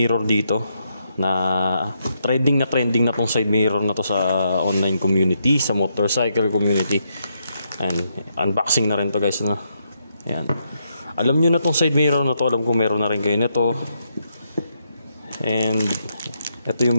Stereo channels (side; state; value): both; inverted; correlation -0.79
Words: dito na trending na tong side mirror na to sa online community, sa motorcycle community. And unboxing na rin to guys, Ayan. Alam nyo na tong side mirror na to, alam ko meron na rin kayo nito. And ito